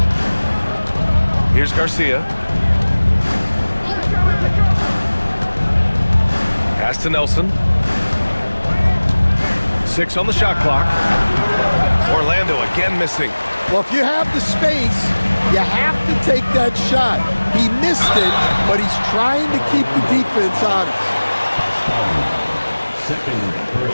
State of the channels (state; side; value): inverted; both; correlation -1.00